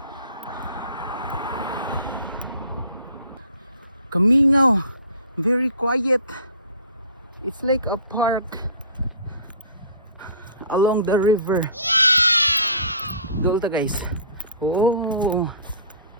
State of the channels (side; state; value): both; inverted; correlation -0.47